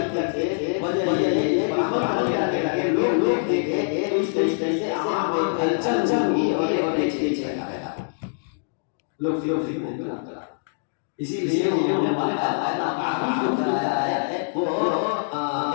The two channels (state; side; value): silent; right; digital silence